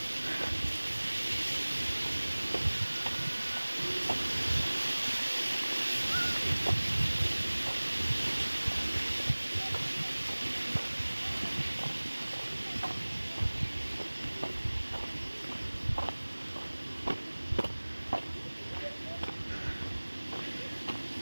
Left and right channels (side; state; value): both; inverted; correlation -1.00